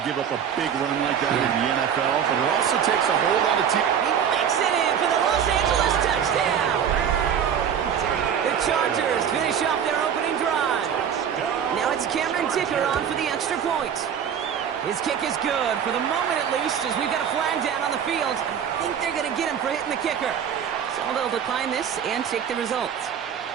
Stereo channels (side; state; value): left; quieter; 8.3 dB